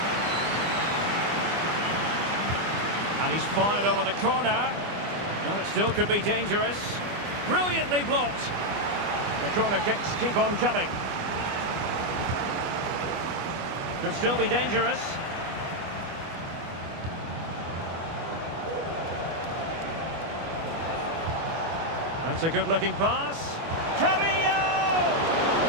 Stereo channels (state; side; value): late; left; 25 ms